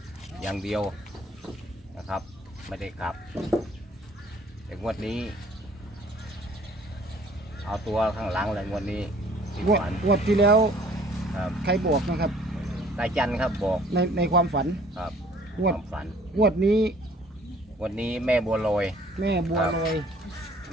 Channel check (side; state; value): both; normal; correlation 0.56